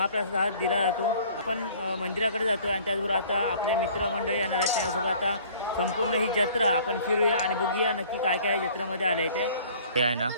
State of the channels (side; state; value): both; inverted; correlation -0.52